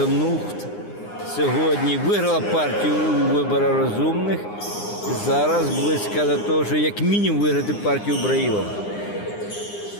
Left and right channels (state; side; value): late; right; 9.8 ms